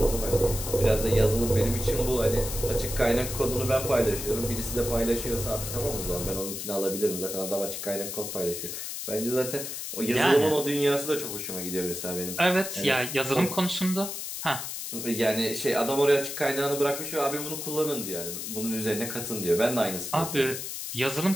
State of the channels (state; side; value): noise; left; hiss, 6 dB below the sound